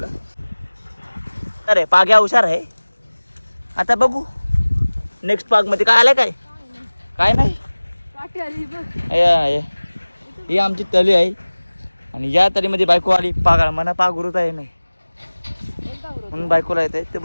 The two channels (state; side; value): inverted; both; correlation -1.00